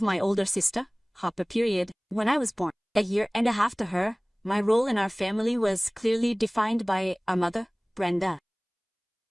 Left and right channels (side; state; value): both; identical; correlation 1.00